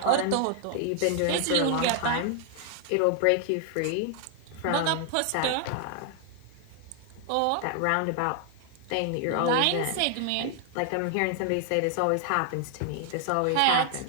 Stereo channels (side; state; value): both; different; correlation 0.00